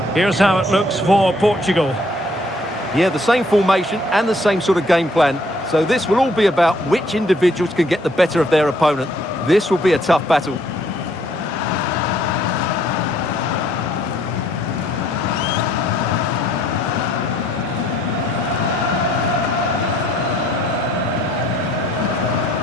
Here's how it looks for Portugal. Yeah, the same formation and the same sort of game plan. So this will all be about which individuals can get the better of their opponent. This will be a tough battle.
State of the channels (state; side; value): normal; both; correlation 0.64